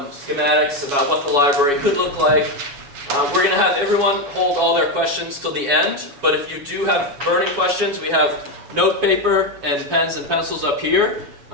schematics about what the library could look like. We're going to have everyone hold all their questions till the end, but if you do have burning questions, we have note paper and pens and pencils up here,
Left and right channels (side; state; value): left; late; 7.2 ms